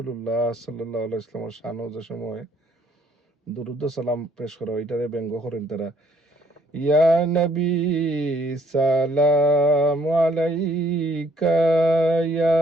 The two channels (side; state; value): both; normal; correlation 0.64